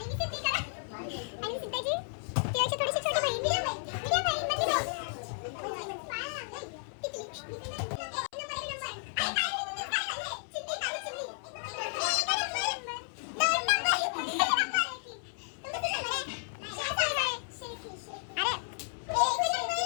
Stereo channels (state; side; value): silent; right; 56 dB below the other